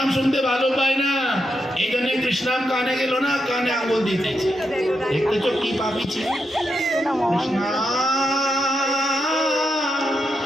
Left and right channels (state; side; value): normal; both; correlation 0.84